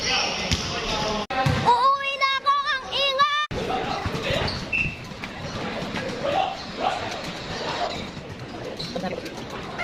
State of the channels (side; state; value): both; identical; correlation 1.00